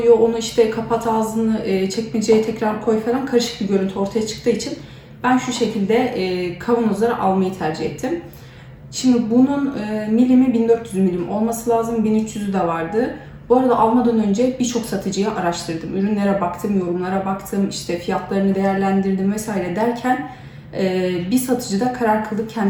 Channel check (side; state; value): both; identical; correlation 1.00